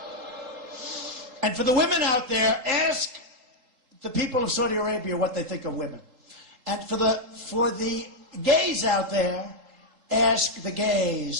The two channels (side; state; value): left; late; 3.8 ms